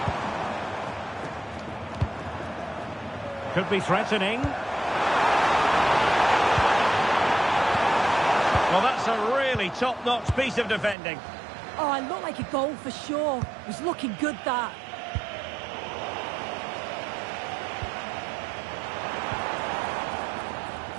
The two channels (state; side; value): drops out; left; at 11.0 s